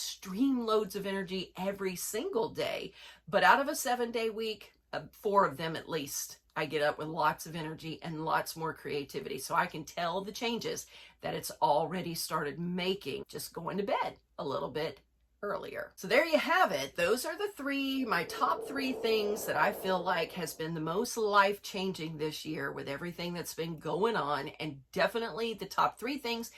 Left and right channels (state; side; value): identical; both; correlation 1.00